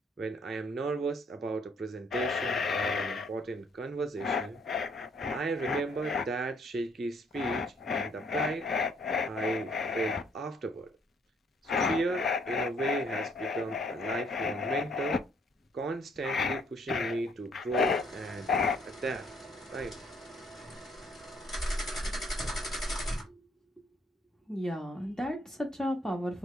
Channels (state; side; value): normal; both; correlation 0.66